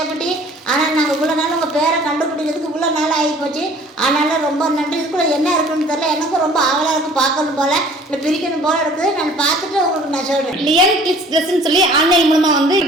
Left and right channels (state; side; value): normal; both; correlation 0.51